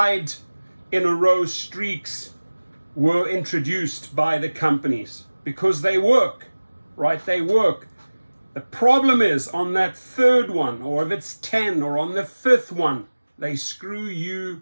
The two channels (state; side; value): inverted; both; correlation -1.00